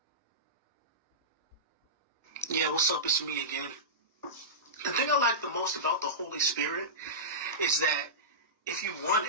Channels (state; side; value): normal; both; correlation -0.16